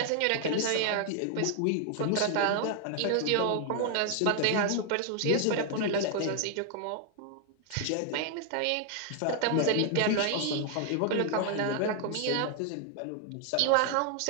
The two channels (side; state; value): both; different; correlation 0.00